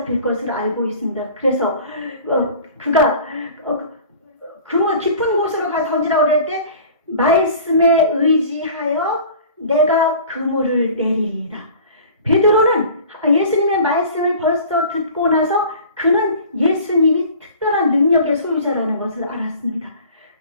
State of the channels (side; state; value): both; inverted; correlation -0.44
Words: 것을 알고 있습니다. 그래서 그가 그물 깊은 곳으로 가서 던지라고 그럴 때 말씀에 의지하여 내가 그물을 내리리이다. 베드로는 예수님의 말씀을 벌써 듣고 나서 그는 예수님이 특별한 능력의 소유자라는 것을 알았습니다.